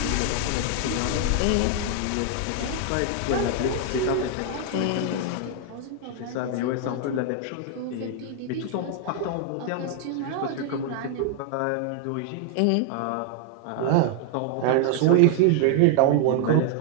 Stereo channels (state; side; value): different; both; correlation 0.00